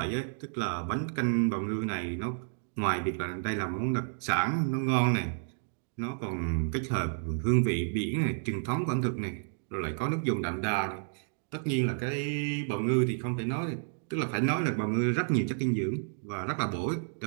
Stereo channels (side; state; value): left; silent; digital silence